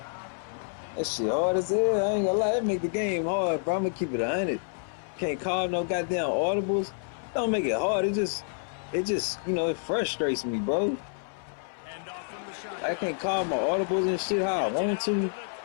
That shit hard as hell. I ain't gonna lie. That make the game hard, bro. I'm gonna keep it 100. Can't call no goddamn audibles. Don't make it hard. It just, you know, it frustrates me, bro. I can't call my audibles and shit how I want to.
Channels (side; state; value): right; silent; 58 dB below the other